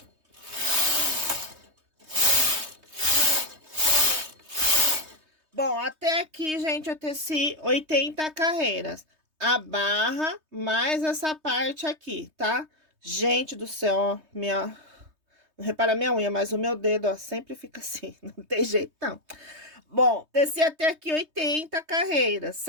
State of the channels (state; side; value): late; left; 3.2 ms